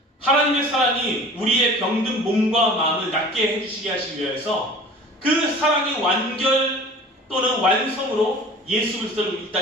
하나님의 사랑이 우리의 병든 몸과 마음을 낫게 해주시게 하시기 위해서 그 사랑의 완결 또는 완성으로 예수 그리스도를 이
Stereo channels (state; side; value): normal; both; correlation 0.43